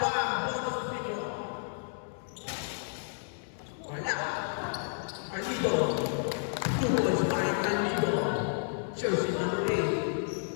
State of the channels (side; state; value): right; silent; digital silence